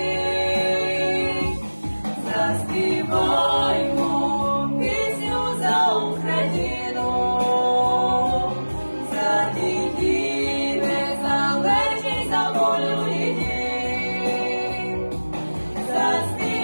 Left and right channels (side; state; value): both; inverted; correlation -1.00